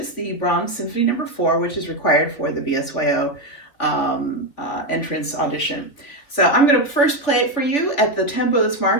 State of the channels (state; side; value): late; right; 3.3 ms